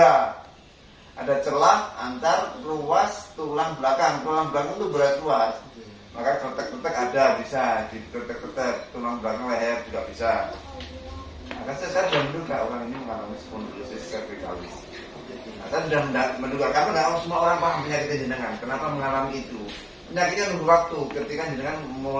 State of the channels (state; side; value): identical; both; correlation 1.00